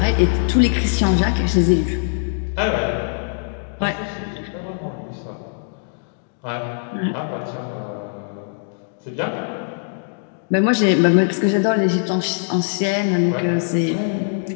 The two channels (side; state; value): right; silent; digital silence